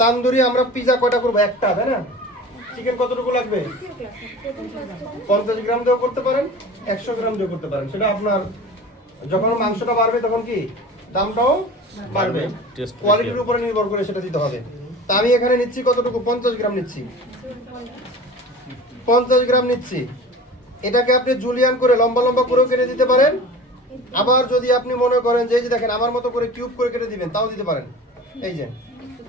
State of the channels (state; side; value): normal; both; correlation 0.38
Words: তান্দুরি আমরা পিজা কয়টা করবো? একটা, তাই না? চিকেন কতটুকু লাগবে? 50 গ্রাম দিয়েও করতে পারেন, 100 গ্রাম দিয়েও করতে পারেন। সেটা আপনার, যখন মাংসটা বাড়বে তখন কি দামটাও বাড়বে, কোয়ালিটির উপরে নির্ভর করে সেটা দিতে হবে। তা আমি এখানে নিচ্ছি কতটুকু? 50 গ্রাম নিচ্ছি। 50 গ্রাম নিচ্ছি। এটাকে আপনি জুলিয়ান করে লম্বা লম্বা করেও কেটে দিতে পারেন। আবার যদি আপনি মনে করেন যে এই যে দেখেন আমার মতো করে কিউব করে কেটে দিবেন, তাও দিতে পারেন। এই যে